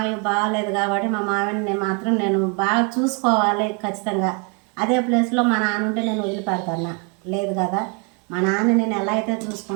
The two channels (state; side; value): quieter; left; 33.9 dB